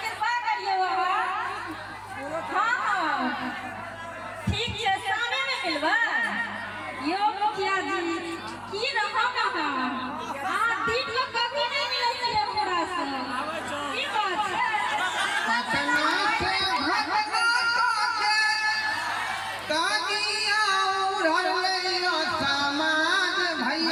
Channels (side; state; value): both; identical; correlation 1.00